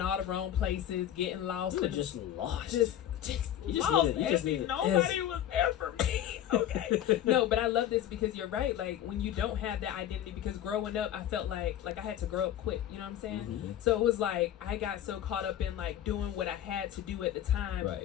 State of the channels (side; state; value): right; quieter; 11.3 dB